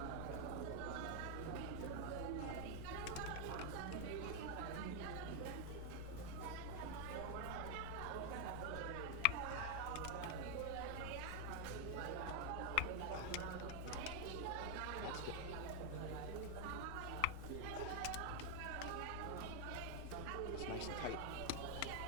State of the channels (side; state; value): both; different; correlation 0.01